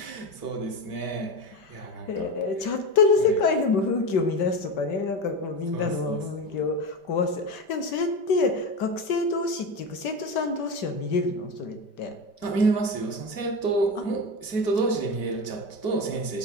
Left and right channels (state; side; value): late; right; 5.1 ms